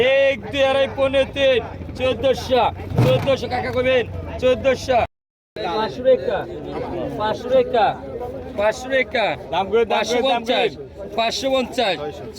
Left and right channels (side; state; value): both; identical; correlation 1.00